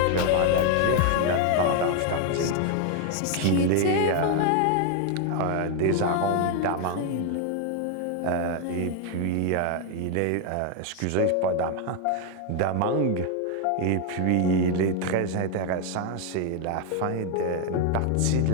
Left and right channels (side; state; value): both; different; correlation 0.01